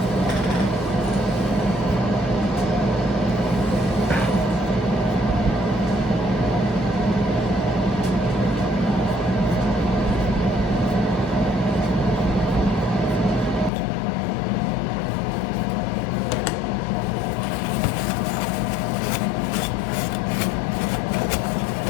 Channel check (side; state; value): right; drops out; at 13.7 s